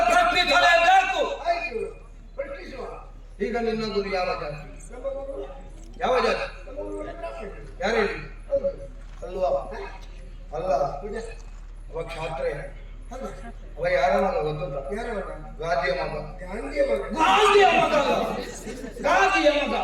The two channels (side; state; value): both; identical; correlation 1.00